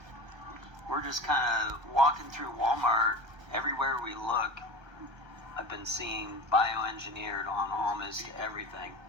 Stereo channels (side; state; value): left; late; 1.3 ms